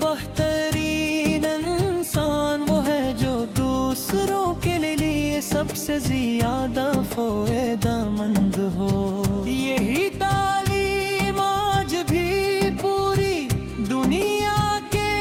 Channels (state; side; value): identical; both; correlation 1.00